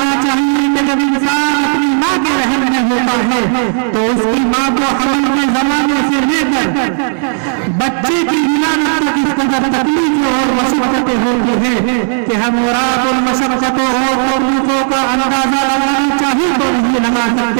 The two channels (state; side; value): silent; left; digital silence